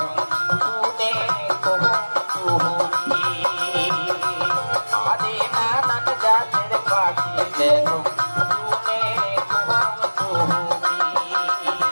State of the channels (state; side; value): inverted; both; correlation -1.00